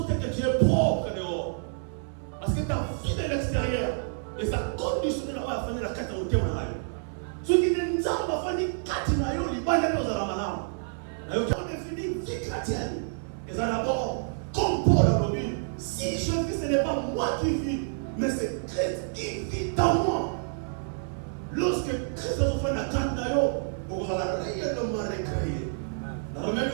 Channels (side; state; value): left; silent; digital silence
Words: que tu es pauvre dehors. Parce que tu as vu de l'extérieur. Et ça conditionne la famille la carte au thème. Ceux qui ne savent pas faire ni carte, ils ne pas dans la malade. On définit vie chrétienne. Et ça d'abord, comme Paul a dit, si je vis, ce n'est pas moi qui vis, mais c'est Christ qui vit dans moi. Lorsque Christ a fait la carte d'ailleurs, on va réellement recréer. Dans Romains